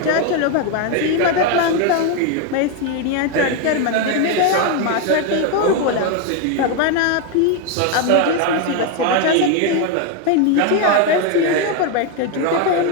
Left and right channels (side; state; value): both; different; correlation 0.01